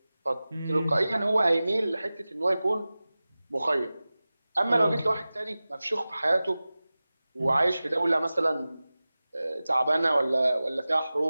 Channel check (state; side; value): inverted; both; correlation -0.97